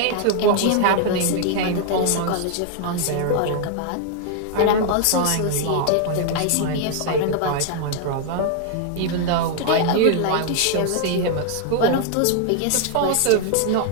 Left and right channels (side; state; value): both; different; correlation 0.00